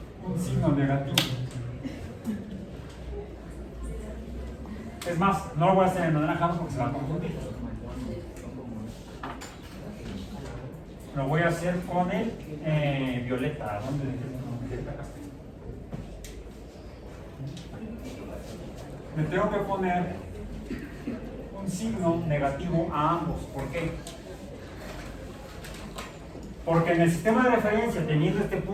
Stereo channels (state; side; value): identical; both; correlation 1.00